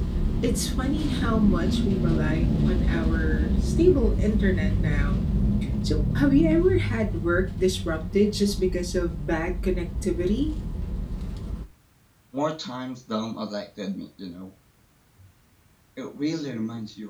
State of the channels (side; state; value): both; identical; correlation 1.00